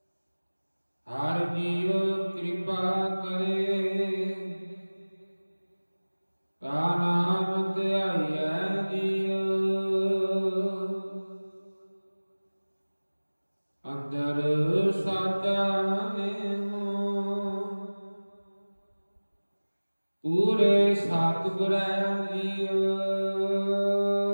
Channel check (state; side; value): inverted; both; correlation -1.00